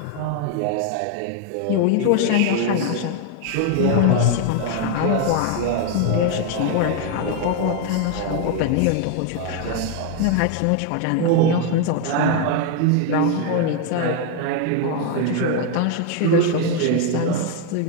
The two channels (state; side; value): different; both; correlation 0.01